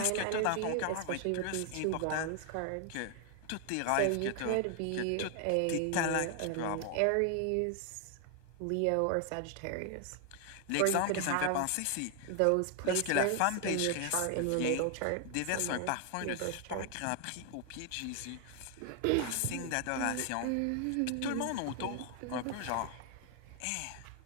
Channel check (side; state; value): both; different; correlation 0.00